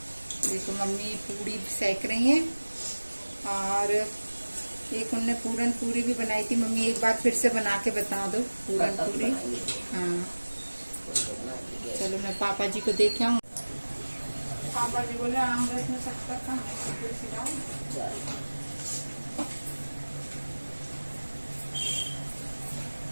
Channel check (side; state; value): both; inverted; correlation -1.00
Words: देखो मम्मी पूरी सेक रही हैं और एक उनने पूरन पूरी भी बनाई थी। मम्मी एक बार फिर से बना के बता दो पूरन पूरी। हाँ चलो मैं पापा जी को देखे आऊँ। पापा जी बोले आम रस में सकता था